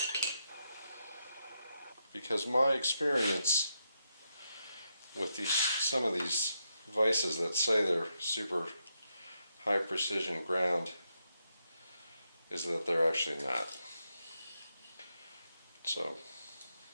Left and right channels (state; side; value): inverted; both; correlation -0.82